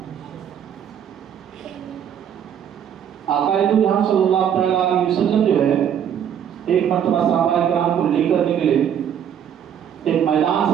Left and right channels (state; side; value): quieter; left; 9.1 dB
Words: آقا جہاں صلی اللہ علیہ وسلم جو ہے ایک مرتبہ صحابہ کرام کو لے کر نکلے، ایک میدان